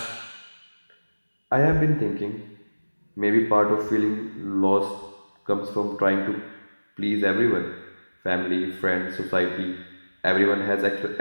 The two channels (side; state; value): both; inverted; correlation -1.00